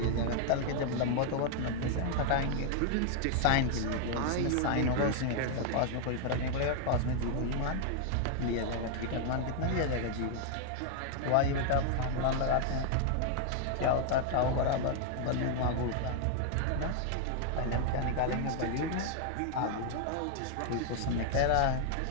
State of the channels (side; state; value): both; different; correlation 0.00